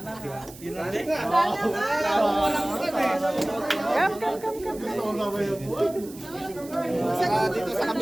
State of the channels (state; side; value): noise; right; hiss, 19 dB below the sound